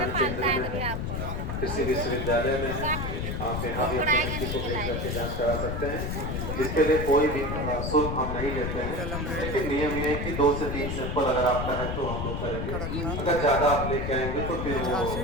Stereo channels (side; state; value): left; noise; rumble, 3 dB below the sound